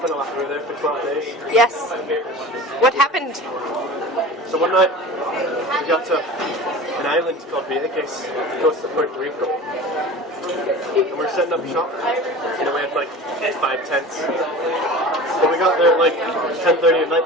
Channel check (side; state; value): both; normal; correlation 0.36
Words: a lot. We were there for 12 days. Yes. What happened? So one night, we got to an island called Vieques, close to Puerto Rico. And we were setting up shop. You know, we had like 5 tents. But we got there at like 10:30 at night